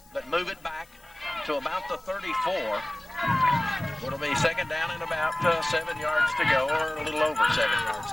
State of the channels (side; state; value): left; noise; hiss, 28 dB below the sound